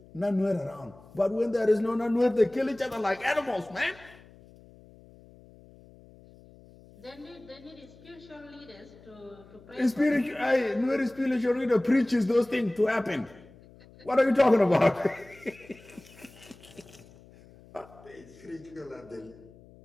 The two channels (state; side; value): noise; left; hum, 23 dB below the sound